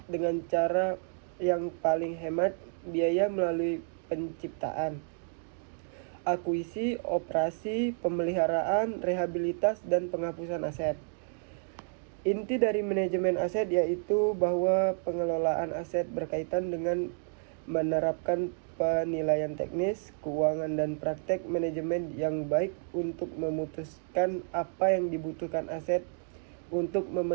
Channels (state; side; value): silent; left; 57 dB below the other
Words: dengan cara yang paling hemat biaya melalui penciptaan, akuisisi, operasi, pemeliharaan, rehabilitas, dan penghapusan aset. Inti dari manajemen aset yaitu bahwa pengelolaan aset berkaitan dengan menerapkan penilaian teknis, keuangan, dan praktek manajemen yang baik untuk memutuskan apa yang dibutuhkan aset untuk